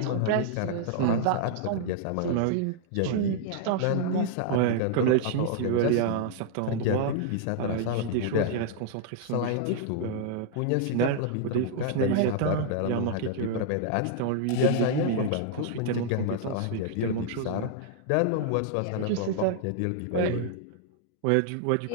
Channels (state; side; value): different; both; correlation -0.01